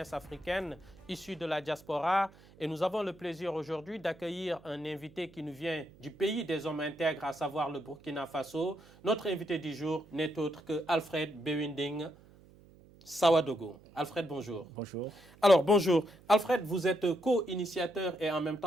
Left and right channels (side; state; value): right; noise; hum, 24 dB below the sound